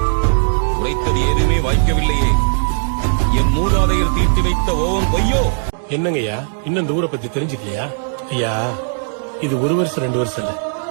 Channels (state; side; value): silent; left; digital silence